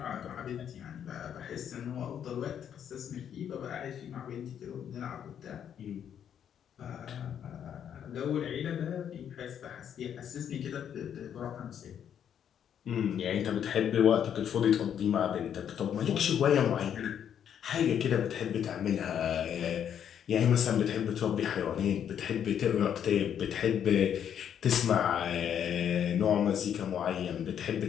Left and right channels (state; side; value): quieter; right; 9.0 dB